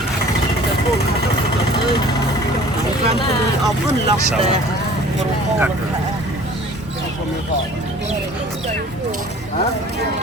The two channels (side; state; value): both; normal; correlation 0.48